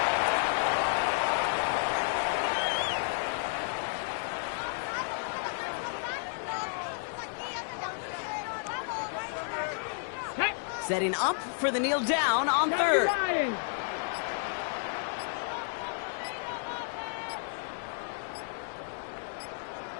Setting up for the kneel down on 3rd.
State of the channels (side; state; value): right; silent; digital silence